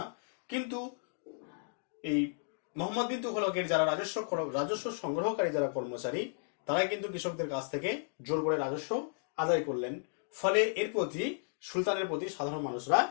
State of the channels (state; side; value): silent; right; digital silence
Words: কিন্তু এই মোহাম্মদ বিন তুগলকের যারা রাজস্ব সংগ্রহকারী যারা কর্মচারী, তারা কিন্তু কৃষকদের কাছ থেকে জোর করে রাজস্ব আদায় করলেন। ফলে এর প্রতি সুলতানের প্রতি সাধারণ মানুষরা